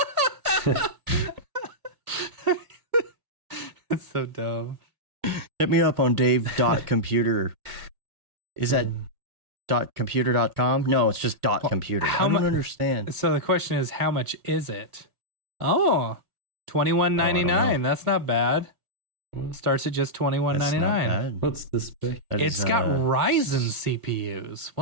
It's so dumb. Hit me up on dave.computer. Is that .computer.com? No, it's just .computer. I don't understand. So the question is, how much is it? Oh, $21.99. That's not bad. Starts at just $21.99. What's the spec? It's got Ryzen CPUs.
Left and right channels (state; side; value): late; left; 2.0 ms